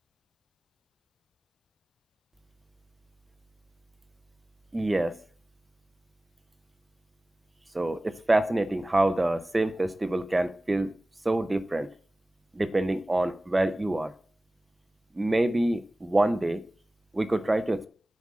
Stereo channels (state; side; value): normal; both; correlation 0.97